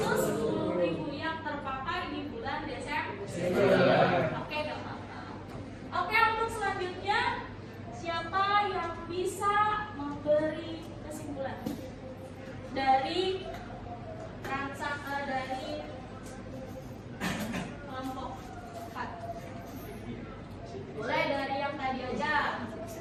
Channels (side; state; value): both; identical; correlation 1.00